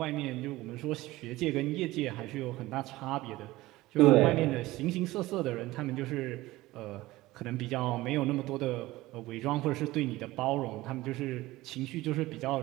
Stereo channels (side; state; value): left; quieter; 18.3 dB